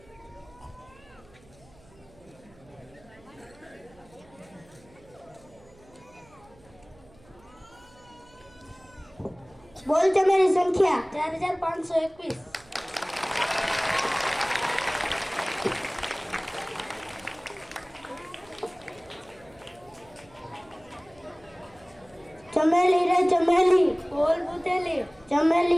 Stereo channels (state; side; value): noise; right; hum, 27 dB below the sound